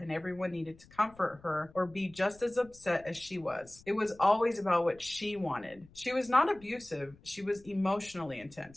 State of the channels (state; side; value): noise; left; rumble, 25 dB below the sound